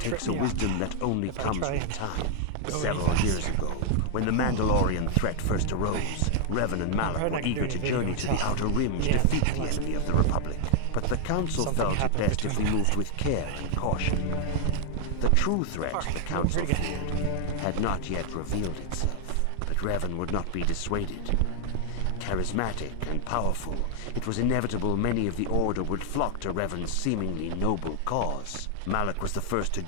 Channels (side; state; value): both; different; correlation 0.00